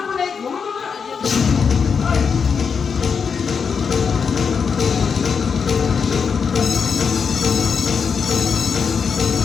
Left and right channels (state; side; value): quieter; right; 6.1 dB